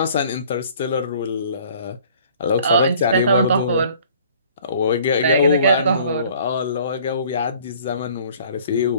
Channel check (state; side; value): inverted; both; correlation -0.54